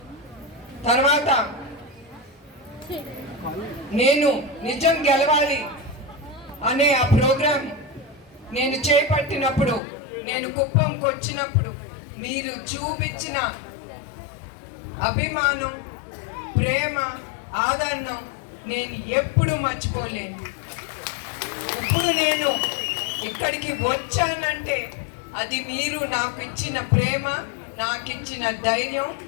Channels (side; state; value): right; drops out; at 9.8 s